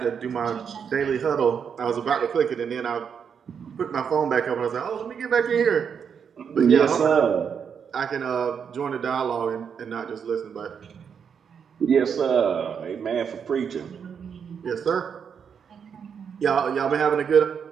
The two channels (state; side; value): quieter; left; 7.1 dB